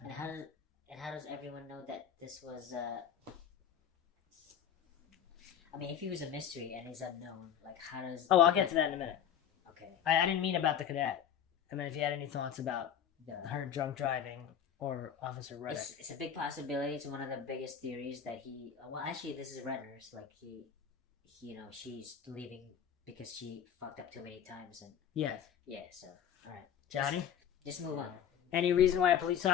And how does everyone know that this was? I mean, if he was a mystery and he's unknown, like how does? Oh, I'll get to that in a minute. Okay. I didn't mean about the cadet. I mean, if you had any thoughts about her drunk driving or Officer Ruddock. It's a big possibility. It's one of the biggest theories that he. Well, actually, this is Renner's. Like she's leaving because she fucked up too many times, and Yes. yeah. So, all right, Johnny? just move on. Any reason why a police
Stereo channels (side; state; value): right; quieter; 8.8 dB